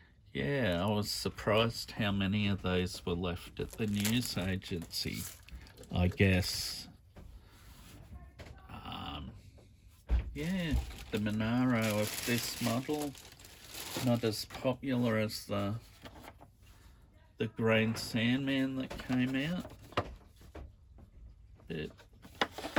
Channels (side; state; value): both; identical; correlation 1.00